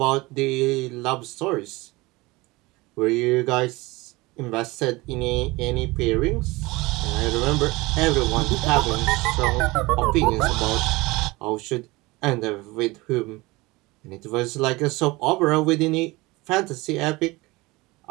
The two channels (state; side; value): quieter; left; 22.2 dB